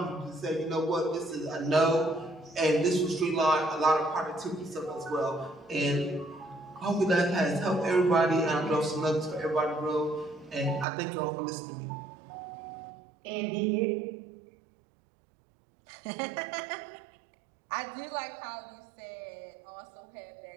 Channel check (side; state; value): left; drops out; at 10.9 s